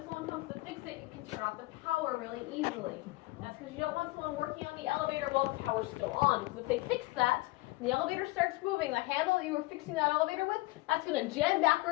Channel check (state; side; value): quieter; right; 21.3 dB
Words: someone comes to fix it, you can turn off the power really easily. That's because you don't want someone working on the elevator while the power's still on. Because if they fix that, and the elevator starts moving, the handle that you were fixing that elevator with, that's going to jam